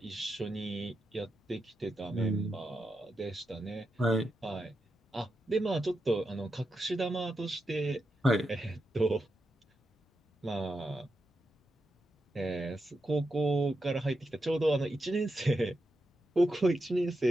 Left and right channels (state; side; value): normal; both; correlation 0.87